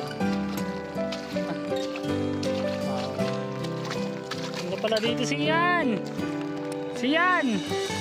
Ano pala dito si Ian? Si Ian!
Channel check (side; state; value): both; identical; correlation 1.00